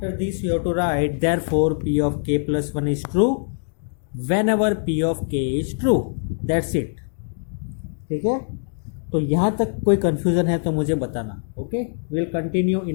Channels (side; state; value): right; silent; digital silence